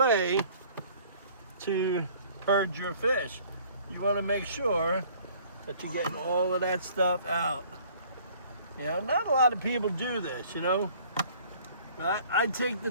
to purge your fish. You want to make sure that you're getting all of that stuff out. You know, not a lot of people do this, you know. But I take the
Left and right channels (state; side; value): inverted; both; correlation -0.55